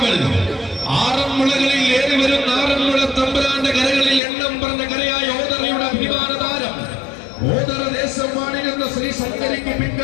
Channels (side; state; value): right; drops out; at 4.2 s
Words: ആറന്മുളകളിൽ ഏറി വരുന്ന ആറന്മുള തമ്പുരാന്റെ കരകളിൽ എണ്ണം പറഞ്ഞ കരയായ ഓതറയുടെ അഭിമാന താരം ഓതറ ദേശം വാണിരുന്ന ശ്രീ ശങ്കരിക്ക്